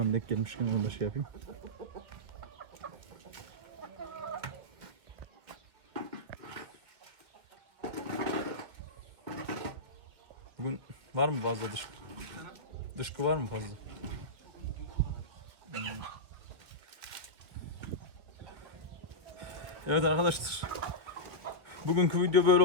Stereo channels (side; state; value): left; late; 1.9 ms